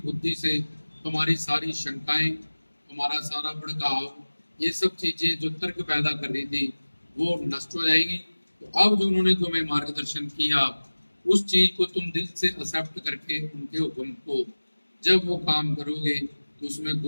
से तुम्हारी सारी शंकाएं, तुम्हारा सारा भड़काव, ये सब चीजें जो तर्क पैदा कर रही थी, वो नष्ट हो जाएगी। तो अब जो उन्होंने तुम्हें मार्गदर्शन किया उस चीज को तुम दिल से एक्सेप्ट करके उनके हुक्म को जब वो काम करोगे तो उसमें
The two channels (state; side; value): inverted; both; correlation -1.00